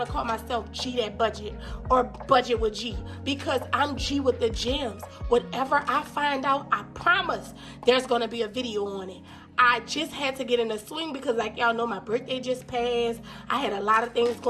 to call myself G That Budget or Budget with G, because I'm G with the gems. Whatever I find out, I promise there's going to be a video on it. I just had to get in the swing because, like y'all know, my birthday just passed. I had a lot of things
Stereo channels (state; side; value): identical; both; correlation 1.00